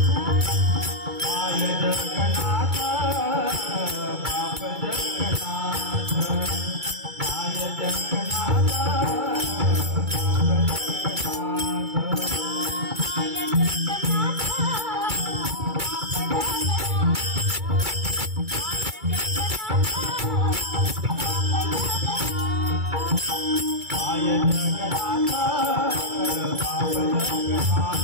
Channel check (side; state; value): left; late; 2.3 ms